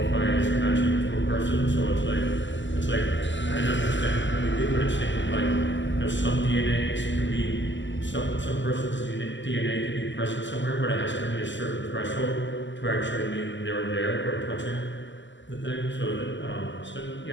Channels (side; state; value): right; late; 0.54 ms